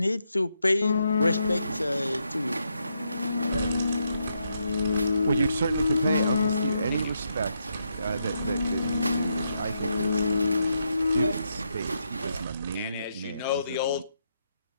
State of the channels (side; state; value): both; inverted; correlation -0.81